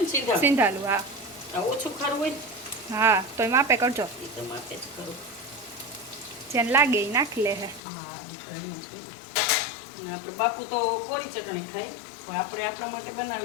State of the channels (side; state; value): right; drops out; at 7.8 s